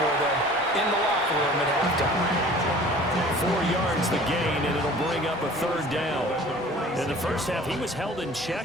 for them in the locker room at halftime. 4 yards the gain, and it'll bring up a third down. In the first half, he was held in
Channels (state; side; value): normal; both; correlation 0.46